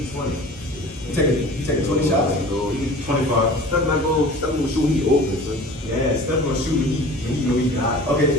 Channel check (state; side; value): normal; both; correlation 0.42